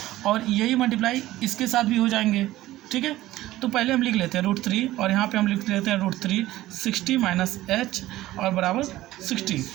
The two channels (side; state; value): left; quieter; 15.9 dB